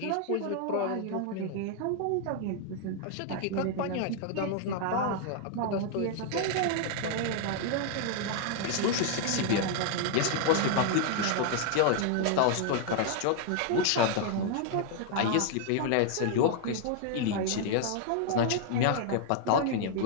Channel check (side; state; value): both; different; correlation 0.00